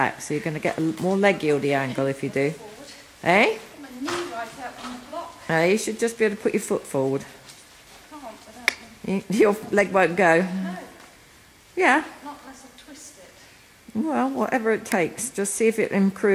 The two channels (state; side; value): identical; both; correlation 1.00